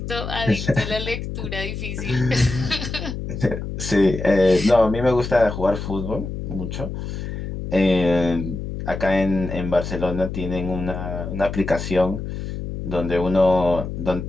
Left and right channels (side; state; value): left; noise; hum, 6 dB below the sound